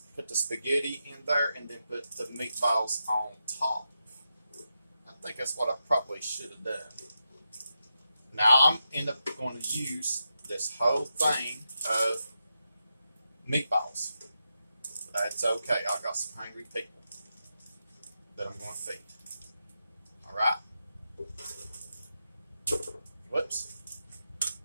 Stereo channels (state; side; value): inverted; both; correlation -0.87